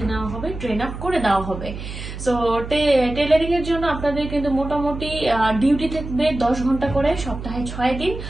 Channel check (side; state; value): right; noise; hum, 9 dB below the sound